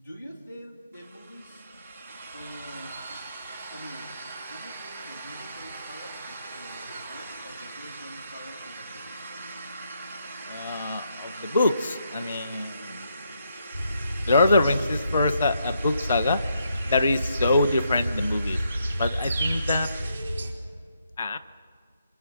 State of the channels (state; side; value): inverted; both; correlation -0.78